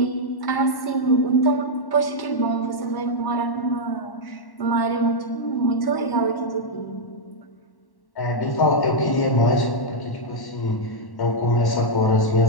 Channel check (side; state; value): right; late; 1.1 ms